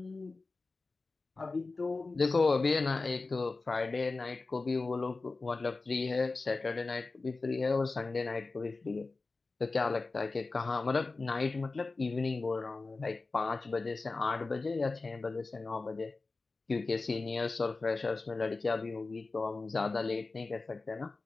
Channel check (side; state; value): right; quieter; 3.7 dB